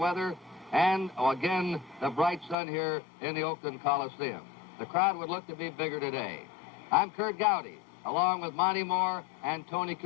and again, the bright sun here in the Oakland Coliseum. The crowd would look to be bigger today. I'm Kurt Gowdy, along with Monty Moore and Tony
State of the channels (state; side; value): drops out; right; at 2.6 s